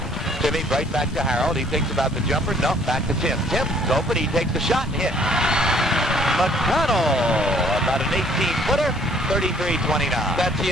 Timmy right back to Harold. He thinks about the jumper. No, back to Tim. Tim's open. He takes the shot and hits. McConnell, about an 18-footer, 33-29. That's the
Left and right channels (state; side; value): noise; left; hum, 16 dB below the sound